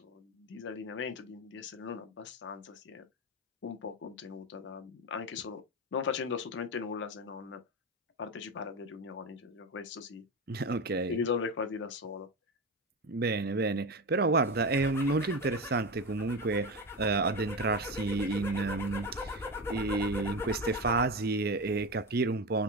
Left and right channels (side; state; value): both; normal; correlation 0.20